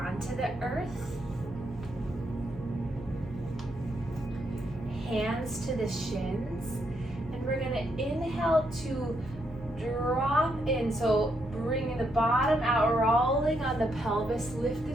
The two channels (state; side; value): normal; both; correlation 0.78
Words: the earth. hands to the shins. And we're gonna inhale to drop in. So bringing the bottom out, rolling on the pelvis, lift